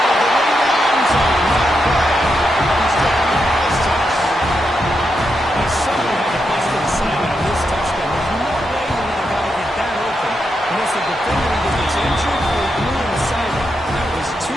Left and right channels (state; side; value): normal; both; correlation 0.84